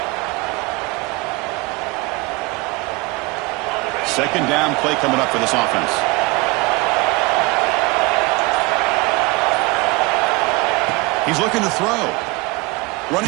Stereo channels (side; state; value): left; quieter; 24.9 dB